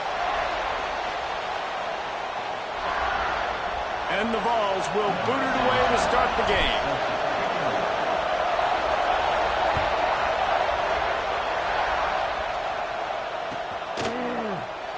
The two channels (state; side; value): identical; both; correlation 1.00